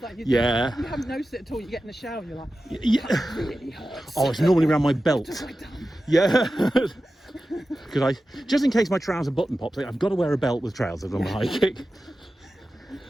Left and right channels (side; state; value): both; normal; correlation 0.93